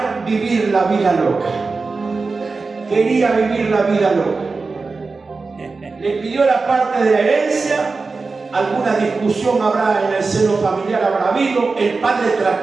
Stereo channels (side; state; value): left; quieter; 4.1 dB